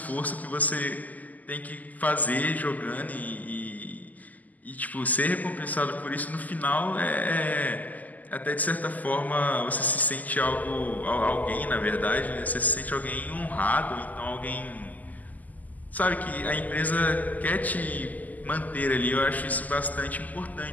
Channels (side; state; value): right; late; 0.080 ms